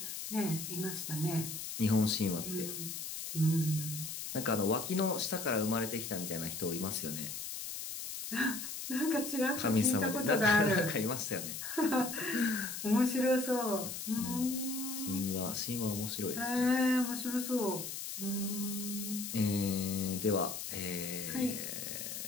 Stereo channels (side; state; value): left; noise; hiss, 6 dB below the sound